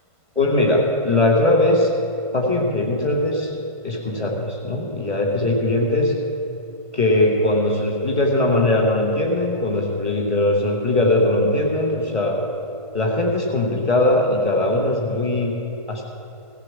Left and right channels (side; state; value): left; late; 1.5 ms